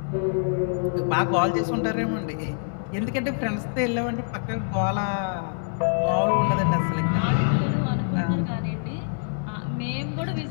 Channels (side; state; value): right; silent; digital silence